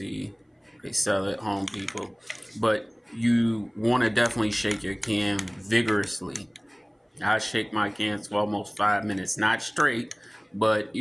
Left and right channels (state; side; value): identical; both; correlation 1.00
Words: they sell at Home Depot. But you want to definitely shake your can vigorously. I shake my cans for almost 5 minutes, not straight, but